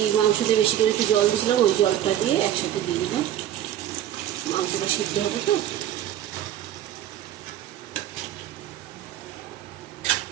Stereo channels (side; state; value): left; quieter; 11.7 dB